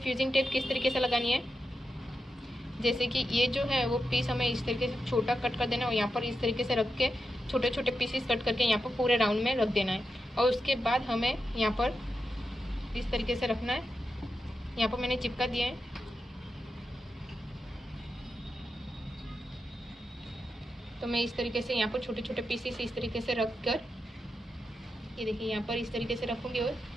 फ्यूजिंग टेप किस तरीके से लगानी है, जैसे कि ये जो है वो पीस हमें इस तरीके से छोटा कट कर देना है और यहाँ पर इस तरीके से रख के छोटे छोटे पीसेस कट करके यहाँ पर पूरे राउंड में रख देना है। और उसके बाद हमें यहाँ पर इस तरीके से रखना है। यहाँ पर मैंने चिपका दिया है। तो मैं इस तरीके से यहाँ पर छोटे छोटे पीसेस इस तरीके से रख कर, ये देखिए यहाँ पर इस तरीके से रखूँगी और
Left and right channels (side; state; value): both; normal; correlation 0.88